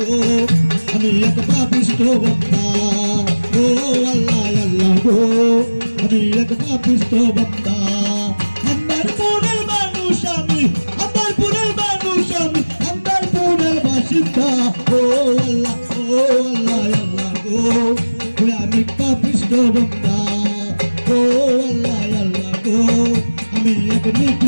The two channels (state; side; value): inverted; both; correlation -1.00